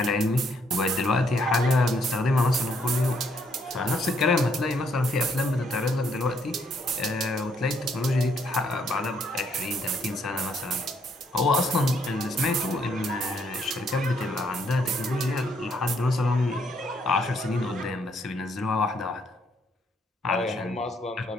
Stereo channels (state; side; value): normal; both; correlation 0.71